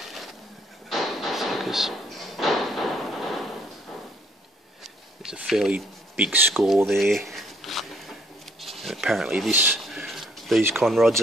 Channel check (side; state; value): both; normal; correlation 0.65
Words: focus. There's a fairly big score there, and apparently these con rods